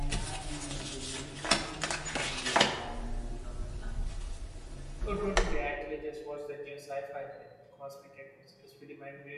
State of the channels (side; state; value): both; identical; correlation 1.00